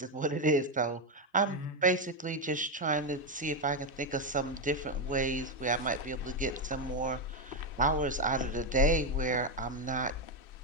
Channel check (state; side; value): normal; both; correlation 0.06